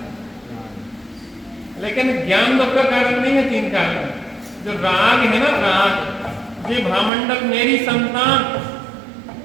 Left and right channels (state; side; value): drops out; left; at 7.1 s